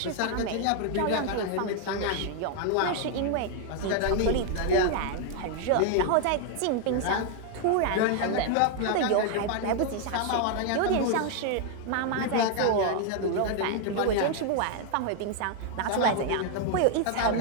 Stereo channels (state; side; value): different; both; correlation 0.00